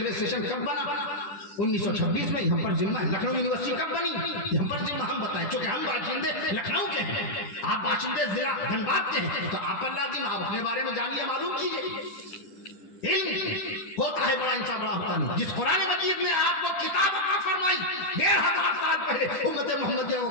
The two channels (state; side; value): late; right; 10 ms